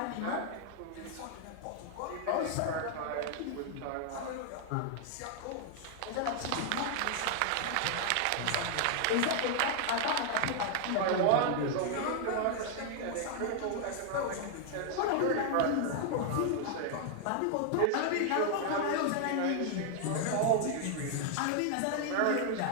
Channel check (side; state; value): both; different; correlation 0.00